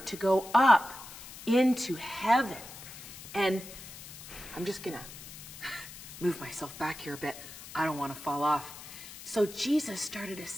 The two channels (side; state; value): left; noise; hiss, 14 dB below the sound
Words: to go up into heaven. And I'm just gonna move myself back here a bit. I don't want to fall off. So Jesus started